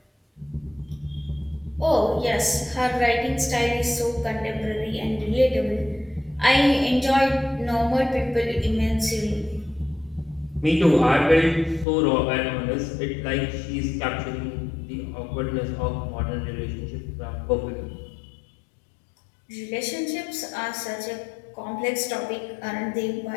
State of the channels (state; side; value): drops out; right; at 11.9 s